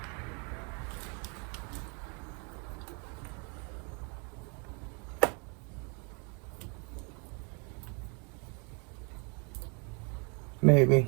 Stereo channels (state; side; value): quieter; left; 34.7 dB